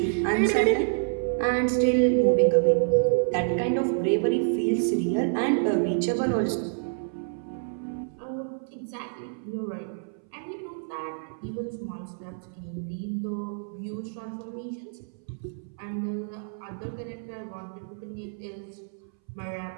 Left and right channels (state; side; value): silent; left; 59 dB below the other